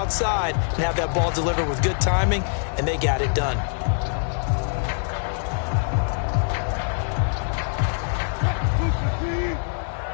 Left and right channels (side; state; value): right; silent; digital silence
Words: and have that ball delivered with good timing. And they got it done.